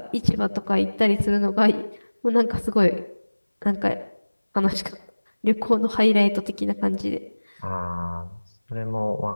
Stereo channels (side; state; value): both; inverted; correlation -1.00